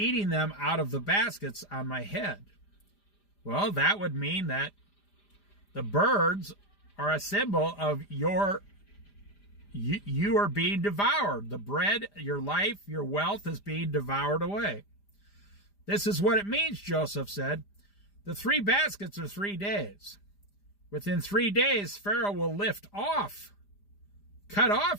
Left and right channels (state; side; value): late; right; 5.0 ms